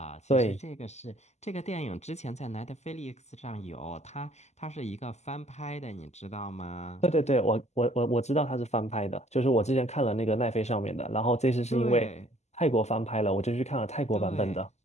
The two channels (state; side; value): late; right; 0.33 ms